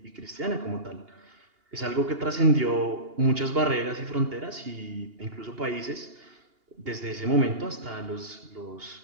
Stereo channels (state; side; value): late; left; 2.8 ms